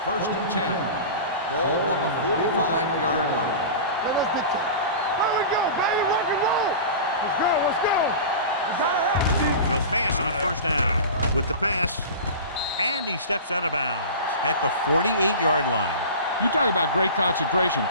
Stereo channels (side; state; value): both; inverted; correlation -0.33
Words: First and 10. Ball on the 45-yard line. There we go, baby. Rock and roll. Let's go. They'll pass on first down with the pass, and he steps out of bounds at the 48-yard line. You talk about great concentration.